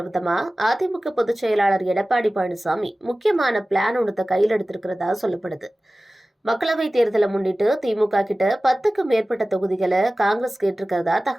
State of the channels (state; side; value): normal; both; correlation 0.97